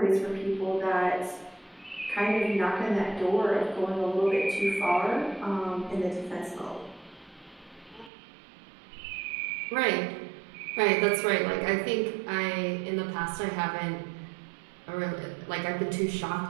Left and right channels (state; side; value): drops out; left; at 8.1 s